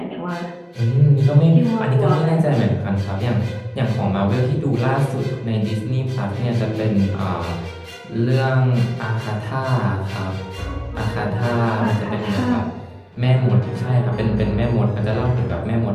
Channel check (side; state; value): both; identical; correlation 1.00